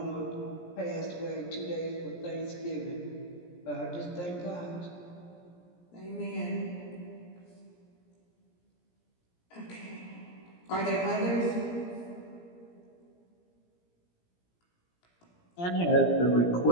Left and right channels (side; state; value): right; late; 17 ms